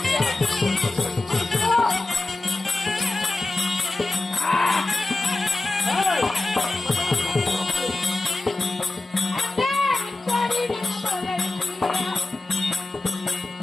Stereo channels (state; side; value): quieter; right; 3.0 dB